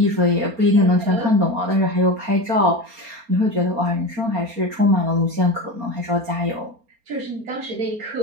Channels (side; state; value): left; late; 4.3 ms